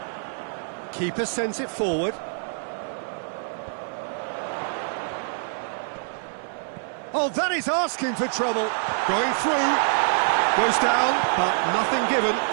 Keeper sends it forward. Oh, that is asking for trouble. Going through. Goes down, but nothing given.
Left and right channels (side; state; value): left; silent; 61 dB below the other